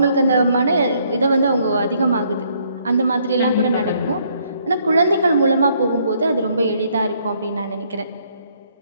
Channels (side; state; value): both; inverted; correlation -0.68